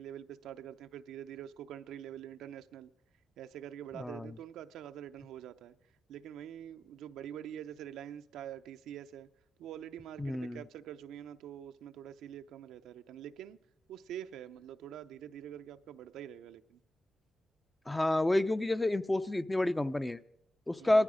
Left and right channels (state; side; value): normal; both; correlation 0.93